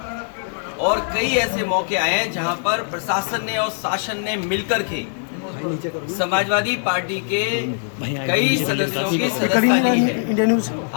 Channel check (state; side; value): silent; right; 65 dB below the other